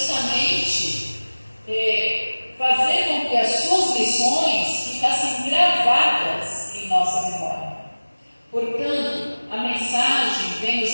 fazer com que as suas lições ficassem gravadas em nossa memória. Portanto, a mensagem vem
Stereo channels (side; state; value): both; inverted; correlation -1.00